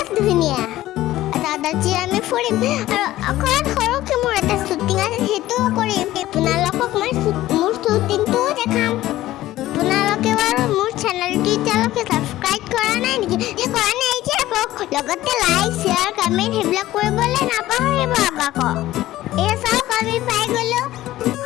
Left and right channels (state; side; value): quieter; right; 15.3 dB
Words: ধুনীয়া। আজি আমি ফুৰিম আৰু অকণমান সৰুকৈ মোৰ এটা শ্বুটিং আছে, সেইটোও কৰিম। আপোনালোকক মই মোৰ শ্বুটিংটোও দেখাম। আপোনালোকে বাৰু মোৰ চেনেলটো এতিয়ালৈকে ছাবস্ক্ৰাইব কৰা নাই নেকি? কৰা নাই যে লগতে লাইক শ্বেয়াৰ কমেণ্ট সেইবিলাক কৰিবলৈ নাপাহৰিব আকৌ। এই চাওক আমি পাই গ'লো।